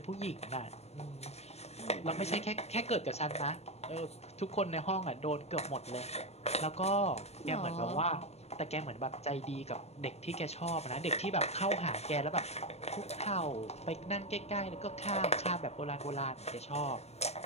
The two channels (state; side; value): late; right; 0.30 ms